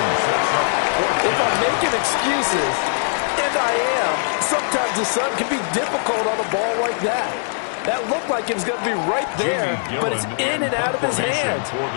If I'm making excuses, and I am, sometimes the sun can be difficult on a ball like that. That looked like it was going to be right there, but it's in and out of his hands.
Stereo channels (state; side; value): silent; right; digital silence